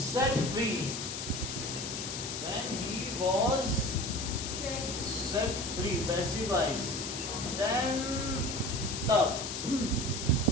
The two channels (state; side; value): noise; left; hiss, 5 dB below the sound